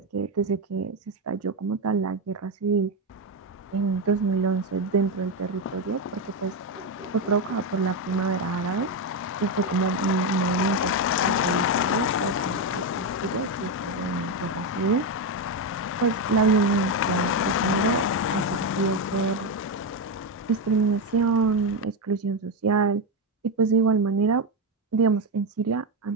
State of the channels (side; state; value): both; normal; correlation 0.09